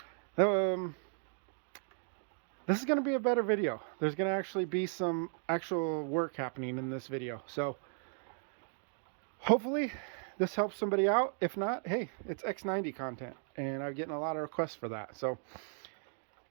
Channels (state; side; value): silent; left; 54 dB below the other